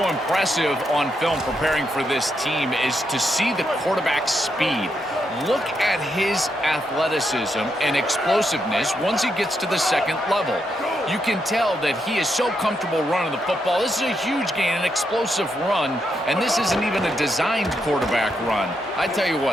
impressive on film preparing for this team is to see the quarterback's speed. Look at his athleticism and explosiveness once he gets to the second level. You can tell that he is so comfortable running the football. This is a huge gain, an explosive run, and this isn't even a designed quarterback run. I tell you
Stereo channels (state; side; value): normal; both; correlation 0.81